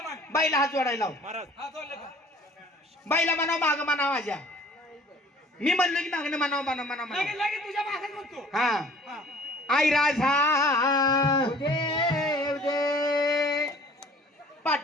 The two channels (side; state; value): both; normal; correlation 0.51